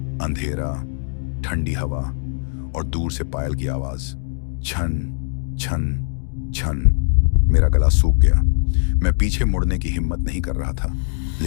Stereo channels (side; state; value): right; silent; digital silence